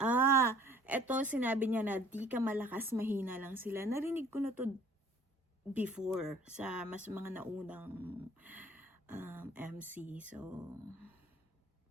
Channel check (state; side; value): normal; both; correlation 0.54